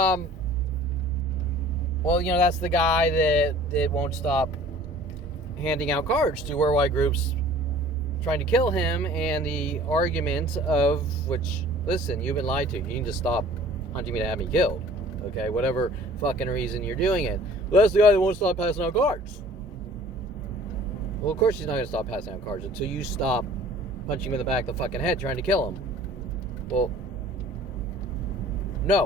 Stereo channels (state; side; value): normal; both; correlation 0.49